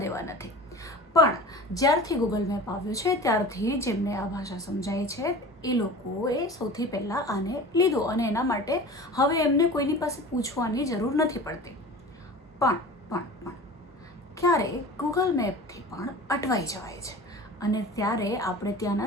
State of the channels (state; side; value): normal; both; correlation 0.38